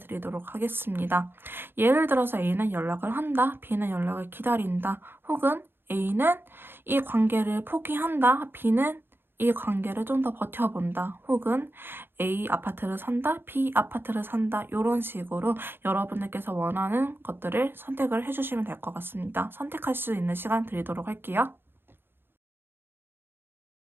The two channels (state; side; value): late; left; 0.10 ms